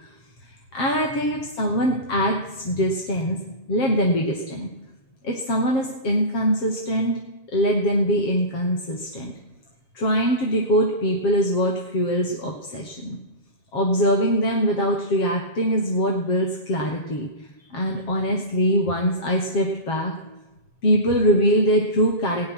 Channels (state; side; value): late; right; 7.4 ms